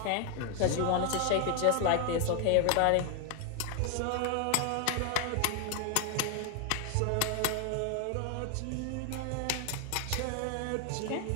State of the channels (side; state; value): both; different; correlation 0.00